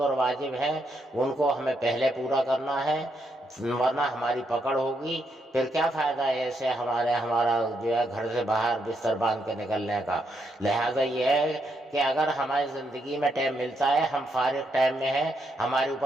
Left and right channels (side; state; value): both; normal; correlation 0.78